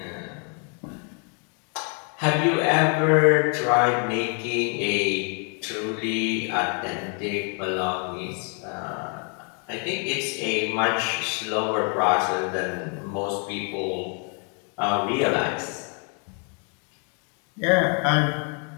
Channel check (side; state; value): right; quieter; 39.3 dB